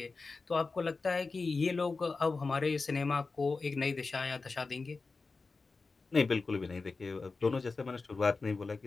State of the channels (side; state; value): right; quieter; 4.1 dB